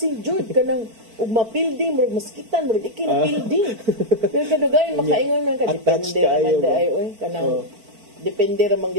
gyud ka ng ug mapilding murag maskitan murag ikinapilding pero kadugayon makaingon man ka depende man day kanang depende ra man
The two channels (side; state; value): left; late; 4.5 ms